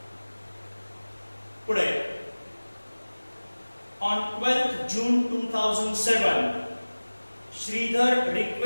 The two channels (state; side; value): inverted; both; correlation -1.00